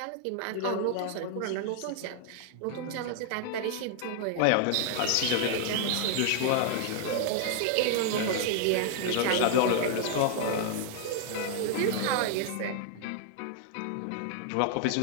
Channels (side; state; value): both; different; correlation 0.00